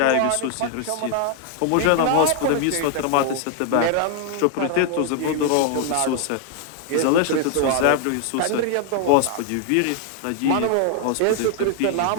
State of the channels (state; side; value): different; both; correlation 0.00